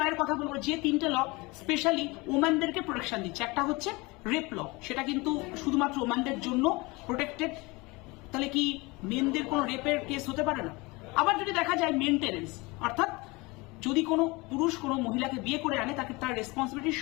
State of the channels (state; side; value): quieter; right; 24.5 dB